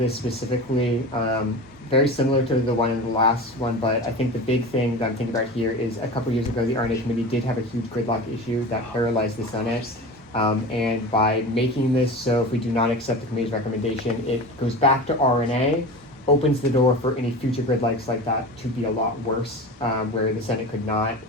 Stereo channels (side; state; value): both; normal; correlation 0.31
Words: specifically. Very similar to the one in the last one, but I think the big thing that I'm thinking about here is a couple years ago the RNA committee did have a huge gridlock issue that paralyzed the Senate. And by making this so if we do not accept the committee's recommendation, it goes back to RNA, opens the door for any future gridlocks like that to be a lot worse, where the Senate could not